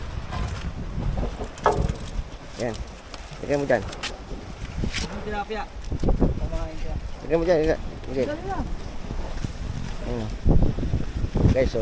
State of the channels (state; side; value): identical; both; correlation 1.00